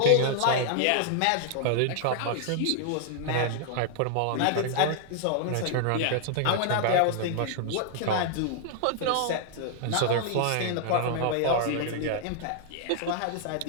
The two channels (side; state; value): both; different; correlation 0.00